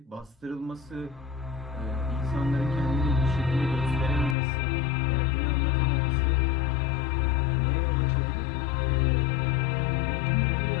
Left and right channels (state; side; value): drops out; right; at 4.4 s